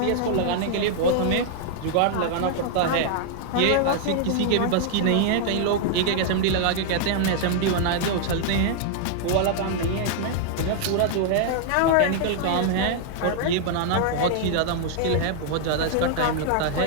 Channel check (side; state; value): both; different; correlation -0.01